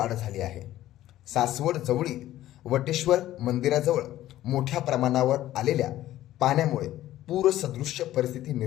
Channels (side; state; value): right; quieter; 14.0 dB